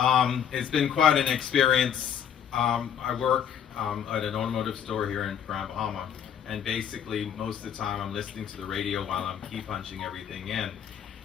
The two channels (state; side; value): quieter; right; 8.8 dB